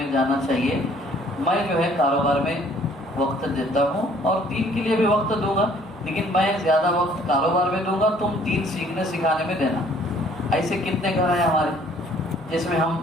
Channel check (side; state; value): both; normal; correlation 0.58